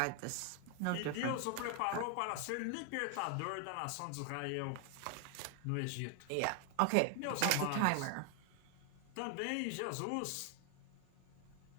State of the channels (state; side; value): different; both; correlation 0.00